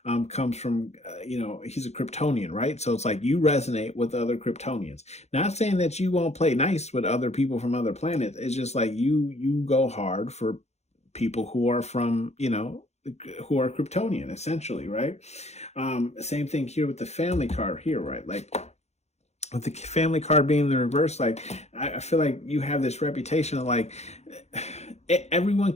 comes from, he's a Kryptonian, right? So it's like you resonate with other Kryptonians. Not saying that you won't play nice with other people from other planets. It's just like you go hard for people who are from, who are Kryptonian, essentially, right? Same thing here with the family card here, right? Like, with the family card being in the reverse, like, I feel like you have this reputation of, like, everyone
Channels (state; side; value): late; right; 0.32 ms